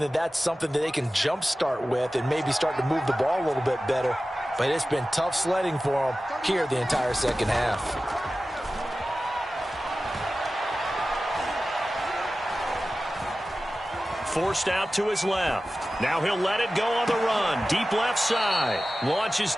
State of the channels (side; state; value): both; normal; correlation 0.95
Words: that that's something that they can jumpstart with and maybe start to move the ball a little bit better. But it's been tough sledding for them here the entire second half. Forced out to his left. Now he'll let it go on the run. Deep left side. Launches